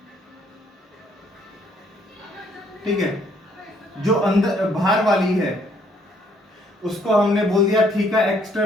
ठीक है, जो अंदर बाहर वाली है उसको हमने बोल दिया थीका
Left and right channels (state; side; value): normal; both; correlation 0.66